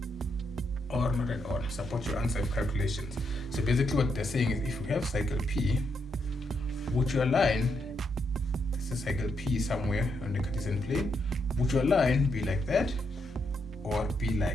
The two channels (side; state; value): both; normal; correlation 0.80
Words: or not at all? Support your answer with calculations. So basically what they're saying is, if we have cycle P, would your line a circle P somewhere on the Cartesian plane, would your line be like that, or be